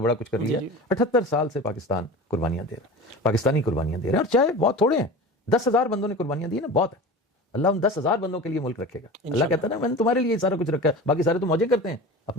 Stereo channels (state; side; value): normal; both; correlation 0.33